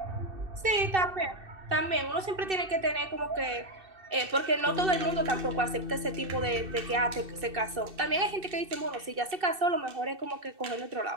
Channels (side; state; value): left; late; 2.6 ms